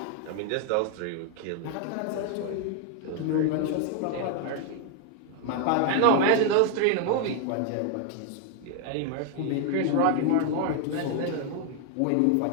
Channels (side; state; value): both; different; correlation 0.01